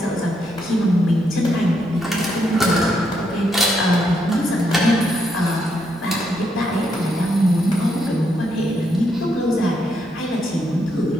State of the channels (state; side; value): normal; both; correlation 0.78